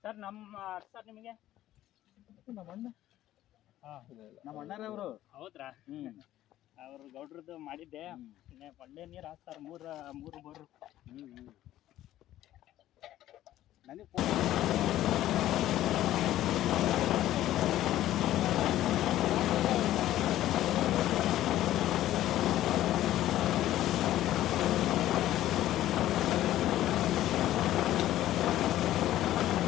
ಸರ್ ನಮ್ಮ ಸರ್ ನಿಮಗೆ ನಮ್ಮ ಅಣ್ಣರವರು ಹೌದ್ರಾ? ಅವ್ರು ಗೌಡ್ರದ್ದು ಮಾಡಿದ್ದೆ. ಒಳ್ಳೆ ನೀರು ಹಾಕ್ತಾರೆ, ಮೂರು ಬೋರು. ನನಗೆ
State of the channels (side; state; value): right; quieter; 13.7 dB